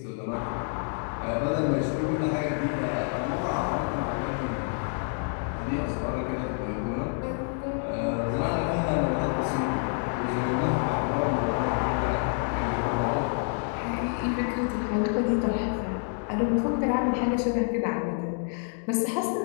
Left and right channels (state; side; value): silent; right; 55 dB below the other